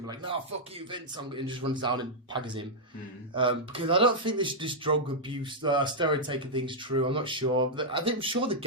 to be like, no, fuck you, Vince. And just runs down and pags him. Because I don't think this drug abuse, steroid taking thing's true. I'm not sure. I'm sure the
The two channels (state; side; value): normal; both; correlation -0.06